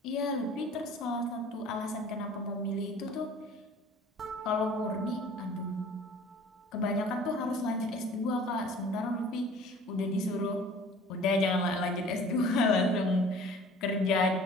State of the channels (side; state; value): both; normal; correlation 0.47